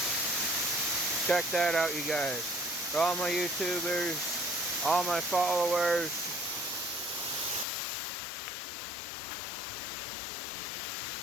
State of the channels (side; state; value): right; drops out; at 7.7 s